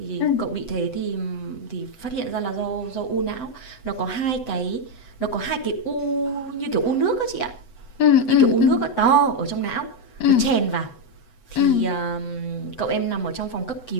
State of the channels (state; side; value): late; right; 7.9 ms